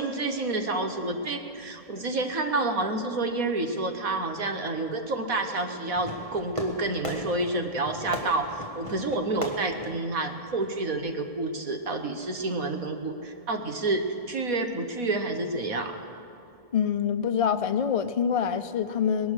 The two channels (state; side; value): late; left; 1.7 ms